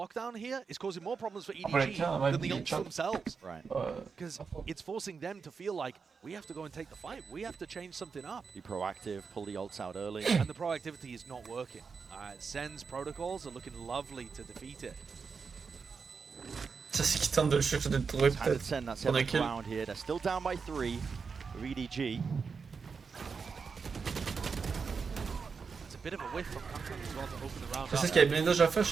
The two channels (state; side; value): quieter; left; 5.4 dB